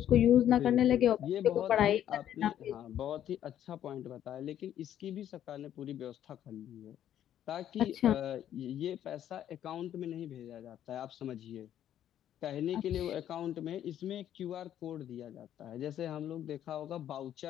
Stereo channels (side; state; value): right; quieter; 10.9 dB